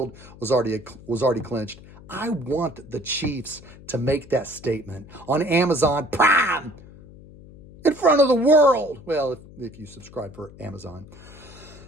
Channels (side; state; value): left; noise; hum, 20 dB below the sound